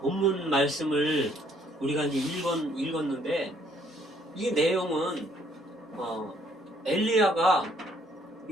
말씀을 우리가 이제 읽었는데 이 내용은 엘리야가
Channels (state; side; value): normal; both; correlation 0.65